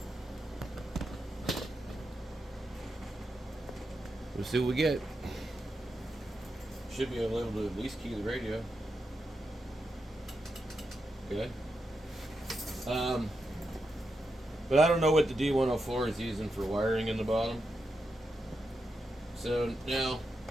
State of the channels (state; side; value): normal; both; correlation 0.86